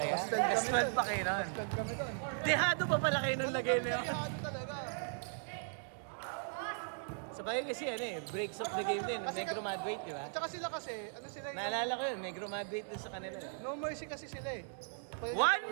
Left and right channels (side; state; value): left; silent; digital silence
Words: Plus 12 pa kayo nun. Dehado pa pala kayo nung lagay niya. Ano talaga? Sabay kasi ano eh, breaks of the game din. Negro Madrid, di ba? Tsaka sila kasi, ano sila yung... Naalala ko yun, Negro Madrid din sa kanila. No mercy kasi sila eh. Kaya 1